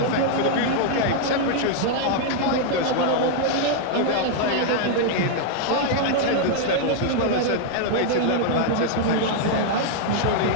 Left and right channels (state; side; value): different; both; correlation 0.00